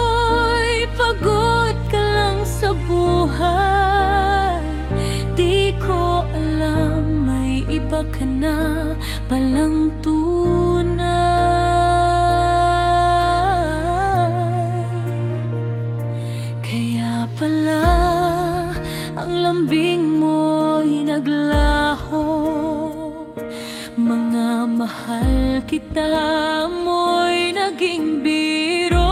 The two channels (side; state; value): both; identical; correlation 1.00